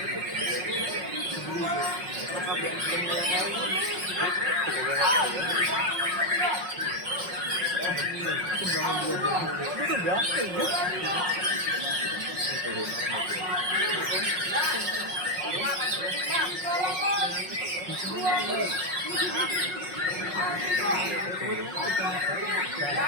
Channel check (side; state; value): left; late; 5.5 ms